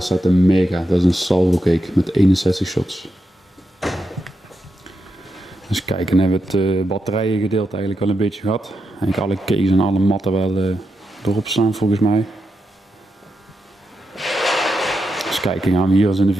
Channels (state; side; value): normal; both; correlation 0.86